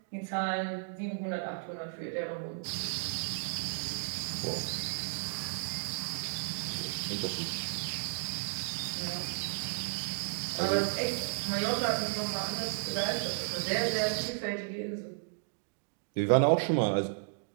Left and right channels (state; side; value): silent; left; digital silence